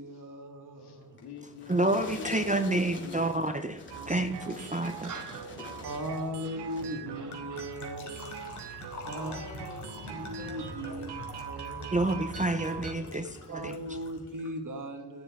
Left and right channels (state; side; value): normal; both; correlation 0.38